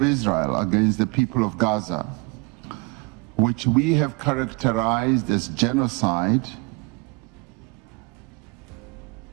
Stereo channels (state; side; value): quieter; left; 28.7 dB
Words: Israel against the people of Gaza, which we have characterized as genocide,